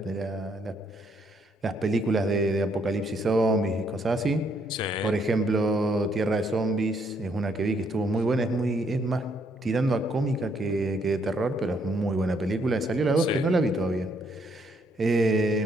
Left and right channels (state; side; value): normal; both; correlation 0.71